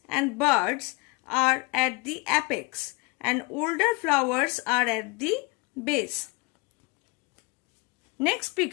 and buds are at the apex and older flowers are at the base. Next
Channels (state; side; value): quieter; right; 27.1 dB